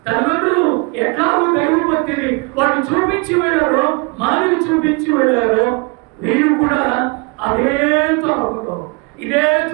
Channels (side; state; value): left; quieter; 31.0 dB